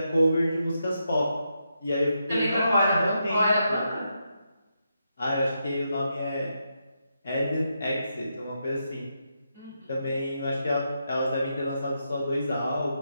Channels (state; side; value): inverted; both; correlation -0.83